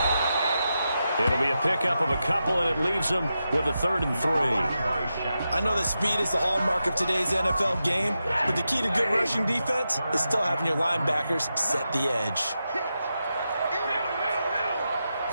It'll be a pickup of a couple, and it leaves them with a 3rd and 3. I know that speed is the hallmark of today's NFL game, but the key to good rushing defense is still having your linebackers set the edge.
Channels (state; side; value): inverted; both; correlation -0.89